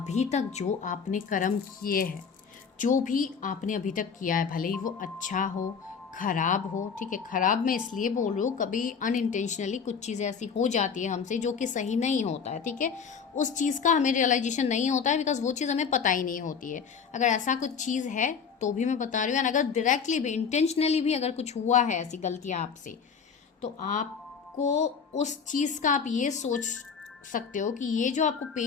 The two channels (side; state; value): right; quieter; 6.3 dB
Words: तक जो आपने कर्म किए हैं, जो भी आपने अभी तक किया है, भले ही वो अच्छा हो खराब हो, ठीक है। खराब मैं इसलिए बोल रही हूँ, कभी अनइंटेंशनली कुछ चीज़ें ऐसी हो जाती है हमसे जो कि सही नहीं होता है, ठीक है। उस चीज़ का हमें रियलाइजेशन नहीं होता है बिकॉज वो चीज़ हमें पता ही नहीं होती है। अगर ऐसा कुछ चीज़ है तो भी मैं बता रही हूँ। अगर डायरेक्टली भी इंटेंशनली भी अगर कुछ हुआ है ऐसी गलतियाँ आपसे, तो आपको उस चीज़ का आप ये सोच सकते हो कि ये जो आपको